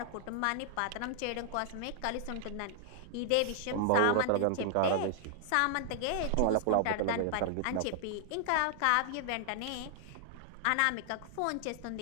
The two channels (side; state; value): both; different; correlation -0.01